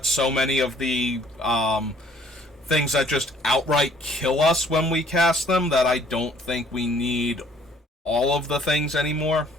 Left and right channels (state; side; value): normal; both; correlation 0.59